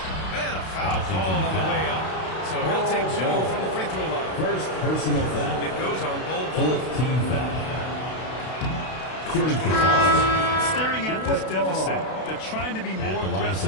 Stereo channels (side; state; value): right; late; 32 ms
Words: And a foul called on the way up. So he'll take 2 from the free throw line. First personal foul. It goes on Bull. Fourth team foul. Staring at this deficit, they're trying to be more